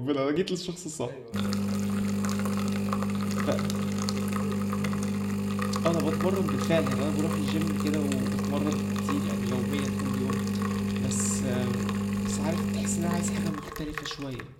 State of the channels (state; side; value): identical; both; correlation 1.00